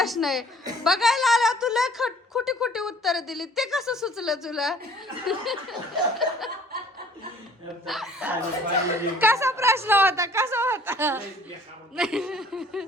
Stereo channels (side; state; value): both; normal; correlation 0.55